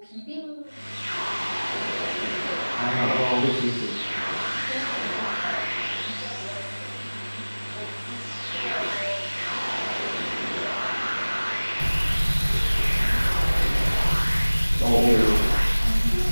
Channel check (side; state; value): both; inverted; correlation -1.00